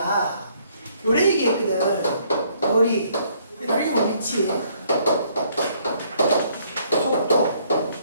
요래 얘기했거든. 거리, 그리고 위치, 속도,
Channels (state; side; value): inverted; both; correlation -0.66